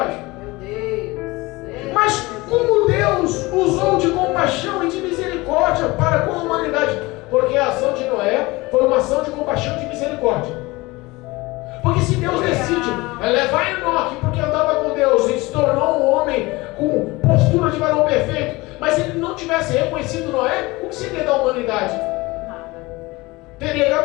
Mas como Deus usou de compaixão e de misericórdia para com a humanidade? Porque a ação de Noé foi uma ação de compaixão e de misericórdia. Porque se Deus decide levar Enoque porque andava com Deus e se tornou um homem com postura de varão perfeito, mas se ele não tivesse reconhecido Noé, o que seria da humanidade? Teria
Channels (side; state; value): right; quieter; 22.1 dB